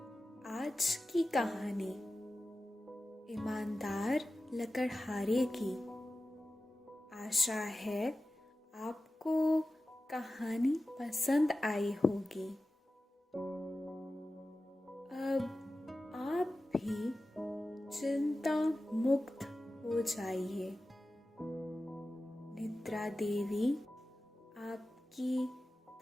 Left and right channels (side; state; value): both; normal; correlation 0.95